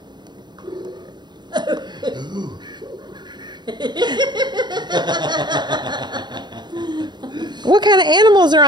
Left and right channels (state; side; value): late; left; 0.21 ms